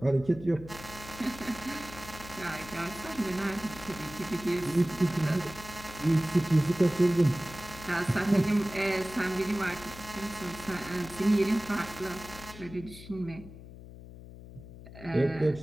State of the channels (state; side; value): noise; left; hum, 15 dB below the sound